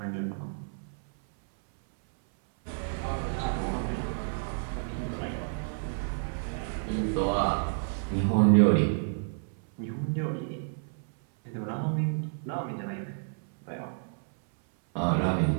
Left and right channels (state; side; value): silent; left; 58 dB below the other